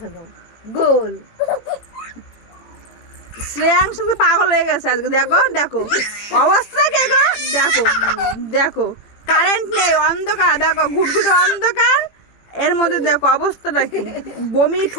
খাও গোল। শ্রেয়াংশ তো পাগল হয়ে গেছে আজকে, দেখো দেখো অবস্থা কে গো, দেখো দেখো কারেন্ট নেই, অন্ধকার, দেখো ঘুটঘুটে অন্ধকার, এর মধ্যে দেখো অবস্থাটা কি, বমি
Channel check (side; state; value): right; late; 18 ms